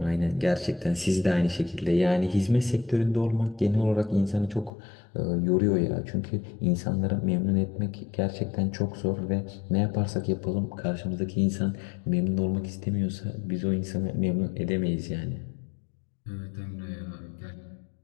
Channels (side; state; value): right; drops out; at 4.7 s